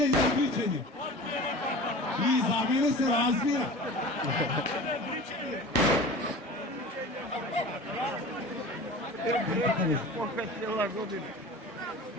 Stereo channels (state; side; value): normal; both; correlation 0.37